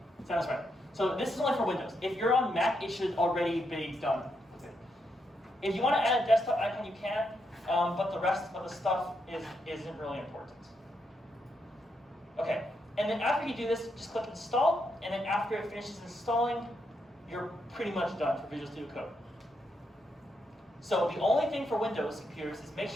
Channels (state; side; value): normal; both; correlation 0.80